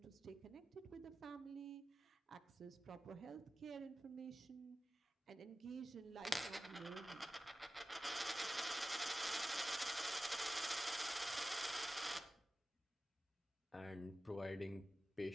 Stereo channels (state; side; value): normal; both; correlation 0.94